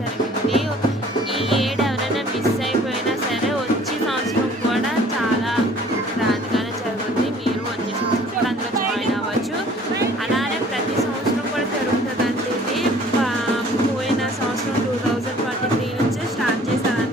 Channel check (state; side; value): normal; both; correlation 0.53